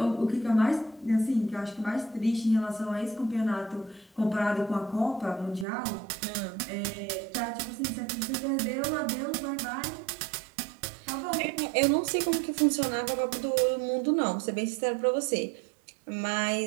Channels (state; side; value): drops out; left; at 5.7 s